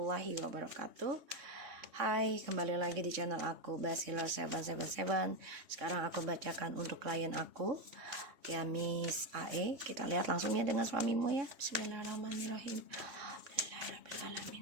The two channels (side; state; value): left; late; 3.3 ms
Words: wabarakatuh. Hai, kembali lagi di channel aku Basila777. Sekarang aku bacakan untuk klien aku, ya Miss AE. Kita lihat langsung ya dengan suamimu ya. Bismillahirrahmanirrahim.